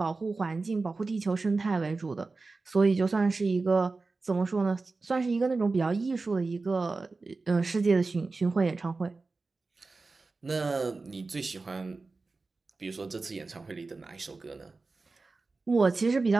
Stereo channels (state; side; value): quieter; left; 3.8 dB